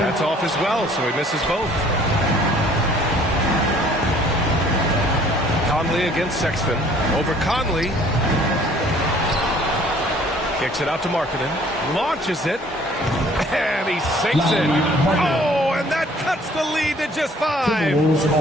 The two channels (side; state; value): both; normal; correlation 0.56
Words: off as well, so he misses both. Conley against Sexton. Over Conley. Kicks it out to Markkanen. Launches it. And he sinks it. Oh, and that cuts the lead to just 5.